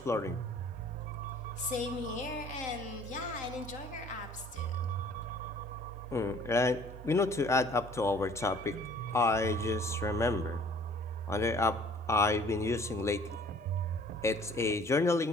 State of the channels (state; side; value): normal; both; correlation 0.54